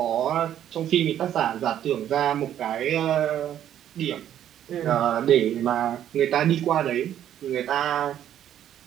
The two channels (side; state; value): left; quieter; 10.8 dB